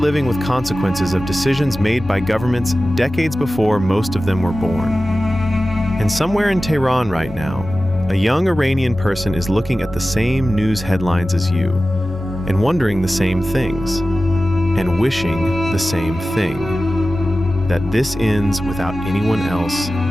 with consequences of decisions made by governments decades before most of them were born. And somewhere in Tehran right now, a young Iranian person is looking at the same news headlines as you, and wondering the same things, and wishing the same thing, that this ends without anyone else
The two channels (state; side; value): normal; both; correlation 0.95